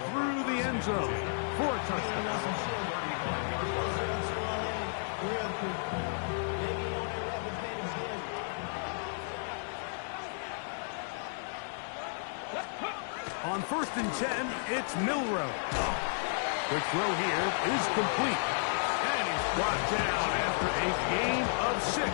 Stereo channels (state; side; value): silent; right; digital silence